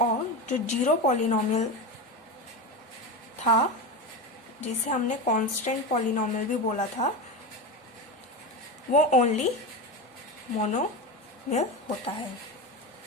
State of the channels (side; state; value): both; normal; correlation 0.20